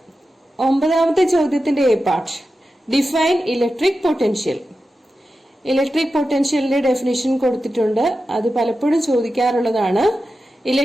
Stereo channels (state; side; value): normal; both; correlation 0.92